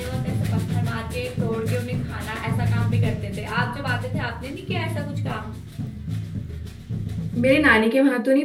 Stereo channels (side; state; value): both; identical; correlation 1.00